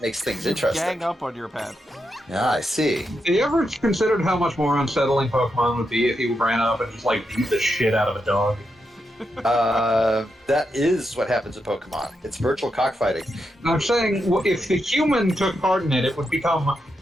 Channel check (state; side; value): normal; both; correlation 0.85